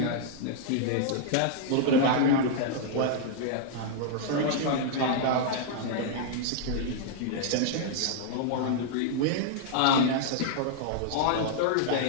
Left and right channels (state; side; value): different; both; correlation -0.01